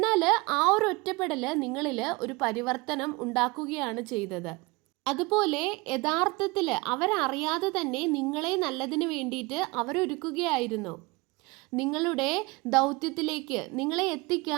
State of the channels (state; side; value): quieter; left; 24.8 dB